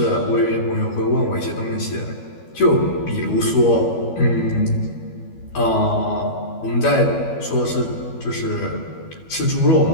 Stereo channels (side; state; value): right; late; 12 ms